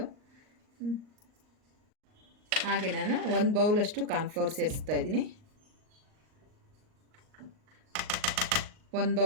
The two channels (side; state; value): left; late; 38 ms